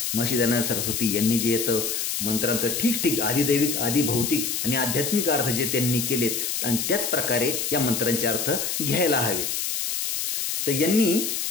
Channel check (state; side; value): noise; left; hiss, 1 dB below the sound